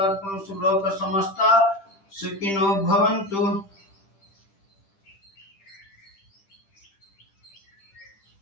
लोक समस्त सुखिनो भवन्तु।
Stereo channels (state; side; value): late; right; 10 ms